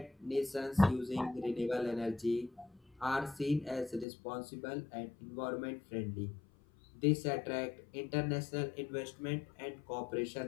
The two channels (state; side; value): drops out; right; at 4.0 s